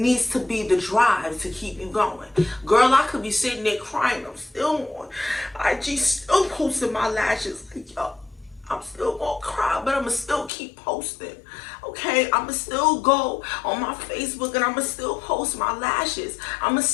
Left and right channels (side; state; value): right; drops out; at 10.5 s